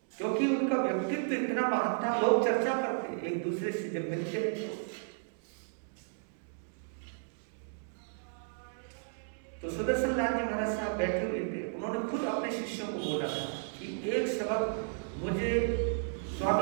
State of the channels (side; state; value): left; silent; digital silence